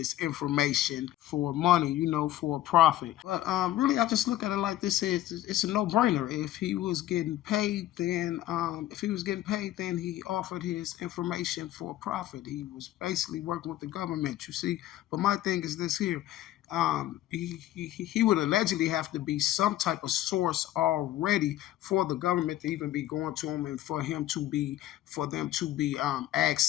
information for money, for a profit. But really, I just look at it like this: it's a no-brainer. If he was getting paid, then he offered his information for a profit. He was basically working with the government, you see. But my thing is this here: he would allegedly have to be some type of source already for the government to even be going to him, and for them to be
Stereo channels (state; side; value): quieter; right; 14.0 dB